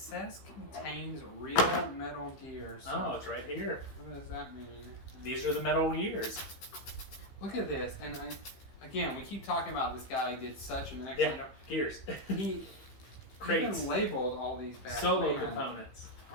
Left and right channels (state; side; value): late; right; 15 ms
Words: contains real Metal Gear. So Oh, it's right here. what does that mean? These are the Metal Gears. Look at this, and again, we keep talking about this guy. He did such an excellent job. Gears. He Crates. even labeled all these back. Solo Man. components.